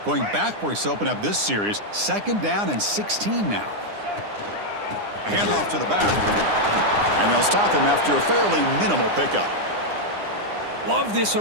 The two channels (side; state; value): left; late; 9.8 ms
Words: Going backwards to open up this series. 2nd down and 16 now. Handoff to the back. And they'll stop him after a fairly minimal pickup. Love this